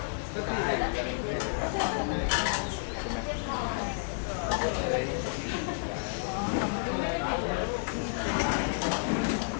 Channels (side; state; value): right; silent; digital silence